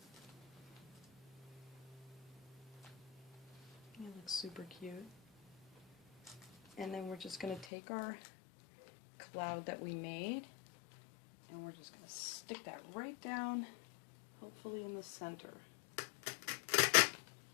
It looks super cute. And then we're just going to take our cloud that we made, and we're just going to stick that right down, hopefully in the center.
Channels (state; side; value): drops out; right; at 7.7 s